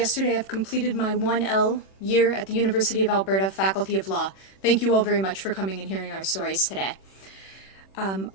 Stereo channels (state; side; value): late; right; 26 ms